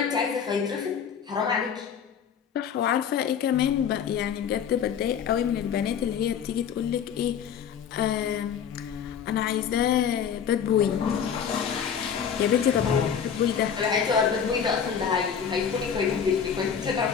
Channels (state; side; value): quieter; right; 7.7 dB